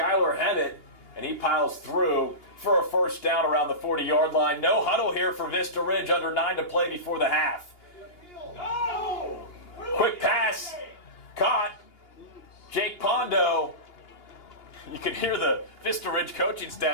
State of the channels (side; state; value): right; late; 2.8 ms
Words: Hammett and he piles through for a first down around the 40-yard line. No huddle here for Vista Ridge, under 9 to play before the half. Quick pass, caught. Jake Pondo. You can hear the Vista Ridge coaching